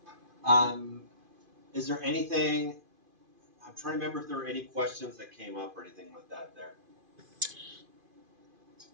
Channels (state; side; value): late; left; 2.5 ms